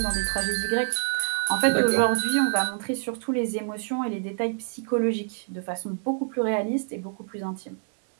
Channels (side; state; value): left; silent; digital silence